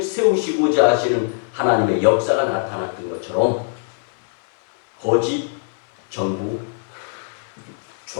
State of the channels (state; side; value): silent; right; 59 dB below the other